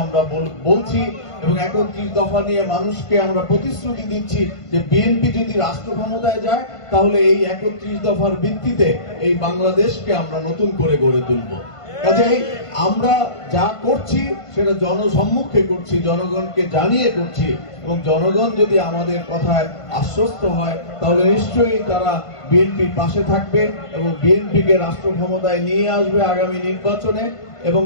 আমরা বলছি, এবং 31 দফা নিয়ে মানুষকে আমরা প্রতিশ্রুতি দিচ্ছি যে বিএনপি যদি রাষ্ট্র ক্ষমতায় যায় তাহলে এই 31 দফার ভিত্তিতে এই বাংলাদেশকে আমরা নতুন করে গড়ে তুলব। কাজেই আমরা যা করছি সেটা জনসম্মুখে করছি, জনগণকে জানিয়ে করছি, এবং জনগণ যদি আমাদের কথায় আশ্বস্ত হয় তাহলে নিশ্চয়ই তারা বিএনপির পাশে থাকবে এবং বিএনপিকে রাষ্ট্র ক্ষমতায় নিয়ে আসবে আগামী নির্বাচনে। এবং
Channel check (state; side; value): late; right; 1.5 ms